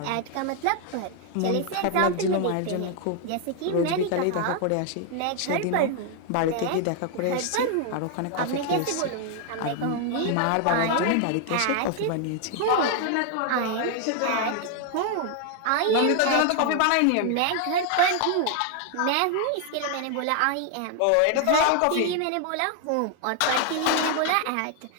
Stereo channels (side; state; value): both; different; correlation 0.00